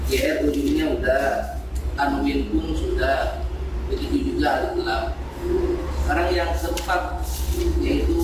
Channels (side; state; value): both; identical; correlation 1.00